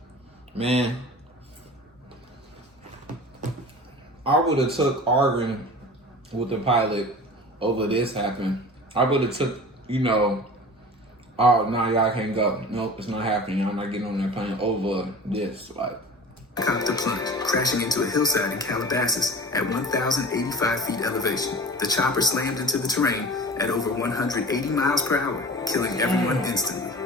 I would have took arguing with the pilot over this happened. I would have took, oh, no, y'all can't go. Nope, it's not happening. I'm not getting on that plane over this. Like, helicopter plunged, crashing into a hillside in Calabasas at 1,085 feet elevation. The chopper slammed into the terrain at over 180 miles per hour, killing everyone instantly.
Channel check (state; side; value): normal; both; correlation 0.38